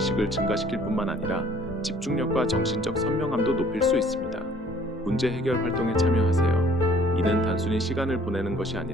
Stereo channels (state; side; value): normal; both; correlation 0.56